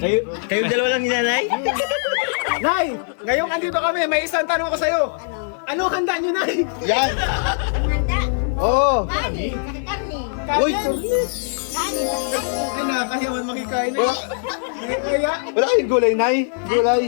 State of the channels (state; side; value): silent; right; digital silence